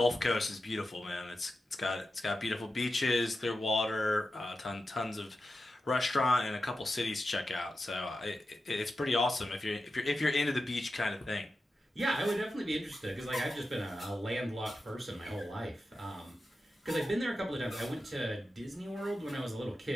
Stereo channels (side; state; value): both; normal; correlation 0.91